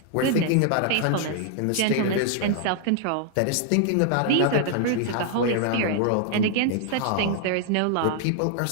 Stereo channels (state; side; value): different; both; correlation 0.00